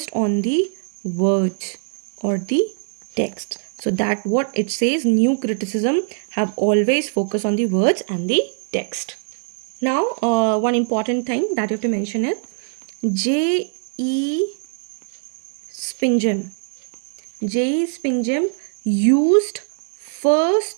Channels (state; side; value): silent; left; 65 dB below the other